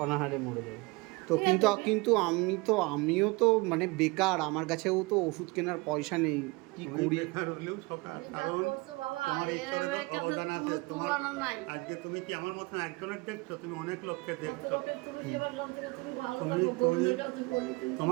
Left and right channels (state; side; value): quieter; left; 25.2 dB